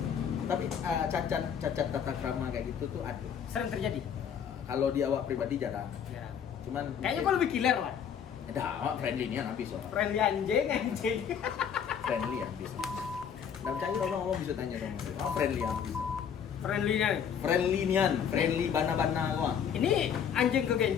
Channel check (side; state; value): right; quieter; 7.9 dB